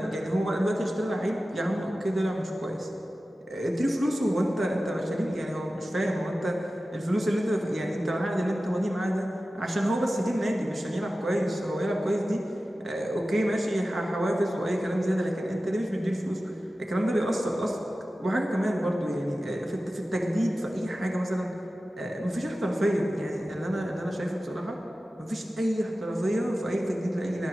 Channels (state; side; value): normal; both; correlation 0.95